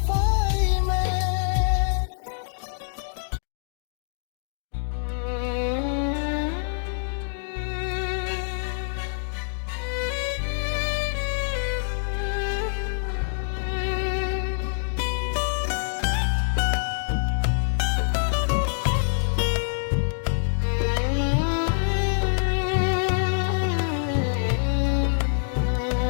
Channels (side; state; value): right; silent; digital silence